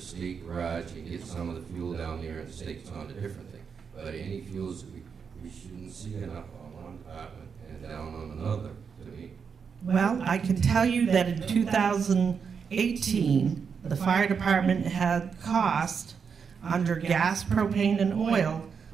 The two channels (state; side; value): quieter; left; 6.2 dB